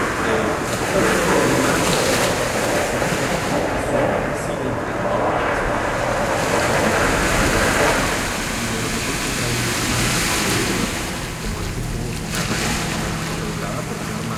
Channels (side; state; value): both; identical; correlation 1.00